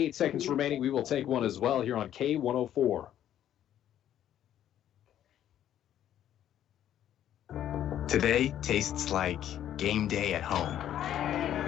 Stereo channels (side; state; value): right; quieter; 11.1 dB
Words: seconds remaining. We will take one as well here on K104. Today tastes like game day at home,